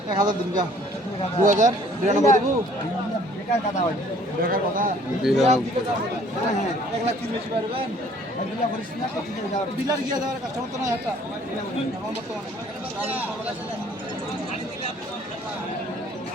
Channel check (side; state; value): both; normal; correlation 0.57